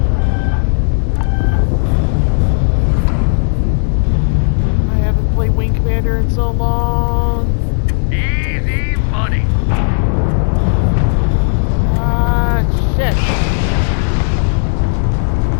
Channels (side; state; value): right; silent; digital silence